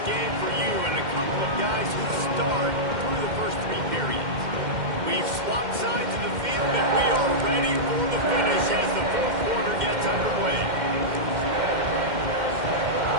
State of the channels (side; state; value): left; late; 2.1 ms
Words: game for you and a couple of guys who start through the first three periods. We've swapped sides of the field, and we are ready for the finish as the fourth quarter gets underway.